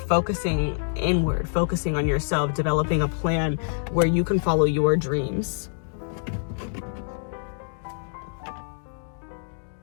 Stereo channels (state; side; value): silent; right; digital silence